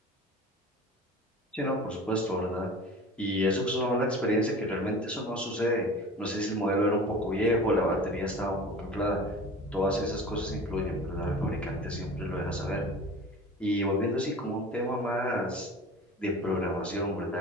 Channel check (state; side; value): normal; both; correlation 0.38